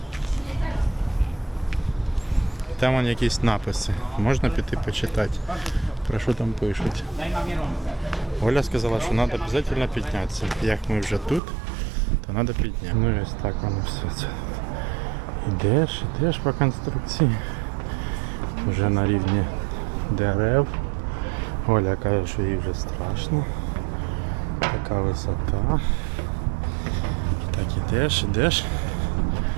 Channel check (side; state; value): left; drops out; at 11.4 s